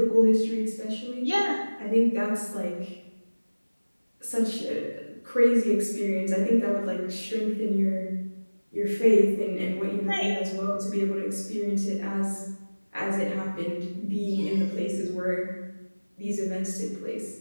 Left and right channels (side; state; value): both; inverted; correlation -1.00